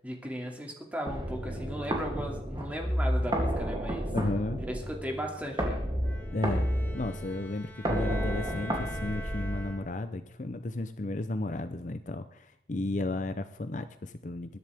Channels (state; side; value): normal; both; correlation 0.79